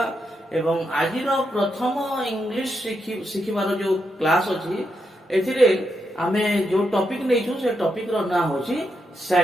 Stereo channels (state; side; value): normal; both; correlation 0.83